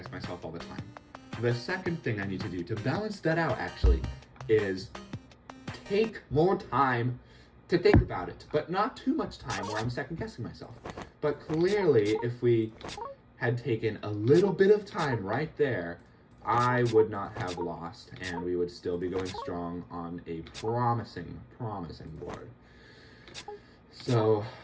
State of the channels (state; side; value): identical; both; correlation 1.00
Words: myself all the time. The second thing I need to do to balance that out, actually, is take more time to think about it, but not too much time where I'm second guessing myself. But clearly, if we had taken a little bit of time right there, I would not have lost, and we would still be going strong on a promising board. So,